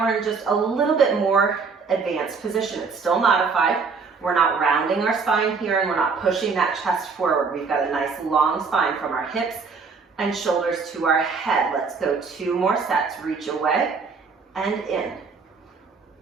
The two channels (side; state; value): left; quieter; 5.0 dB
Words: we're in just a little bit more advanced position. It's still modified. We're not rounding our spine here and we're not pushing that chest forward. We've got a nice long spine from our hips and shoulders to our head. Let's go 2 more sets. Reach away and in.